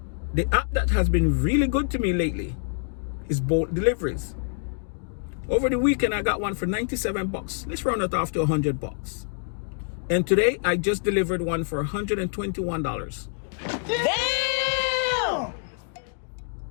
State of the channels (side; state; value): right; silent; digital silence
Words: the app that has been really good to me lately is Bolt Deliveries. Over the weekend, I got one for 97 bucks. Let's round it off to 100 bucks. And today, I just delivered one for $121. Damn!